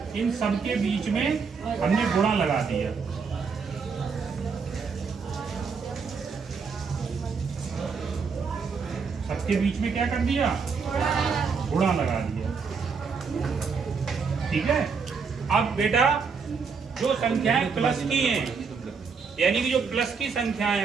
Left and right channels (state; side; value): quieter; left; 5.5 dB